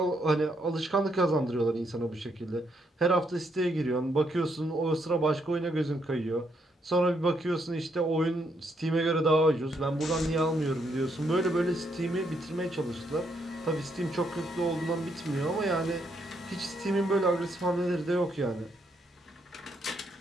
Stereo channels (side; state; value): both; normal; correlation 0.75